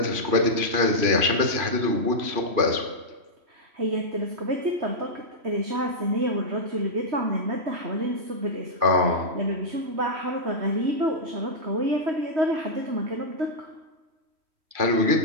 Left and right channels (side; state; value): left; late; 3.1 ms